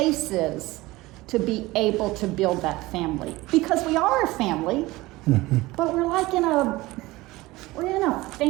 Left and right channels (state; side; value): quieter; left; 19.8 dB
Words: to be able to build that family. Because we are a family, but we're like we're in a